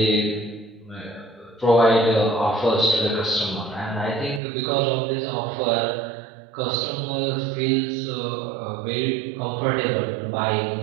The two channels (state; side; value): drops out; left; at 4.4 s